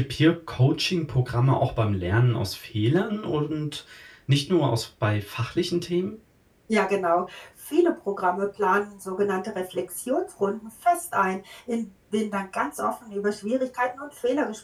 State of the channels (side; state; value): both; identical; correlation 1.00